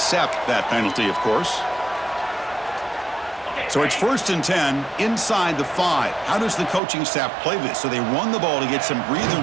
that penalty, of course. So it's 1st and 10 inside the 5. How does the coaching staff play this? So they run the ball to get some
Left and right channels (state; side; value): drops out; left; at 6.8 s